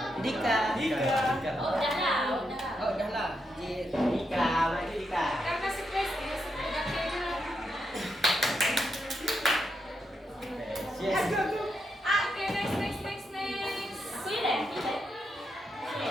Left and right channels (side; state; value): both; normal; correlation 0.83